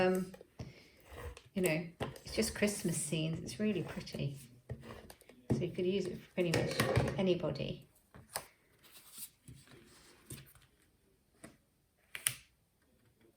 know, it's just Christmas scenes. It's really pretty. So you could use it for pretty much anybody.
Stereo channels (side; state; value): both; identical; correlation 1.00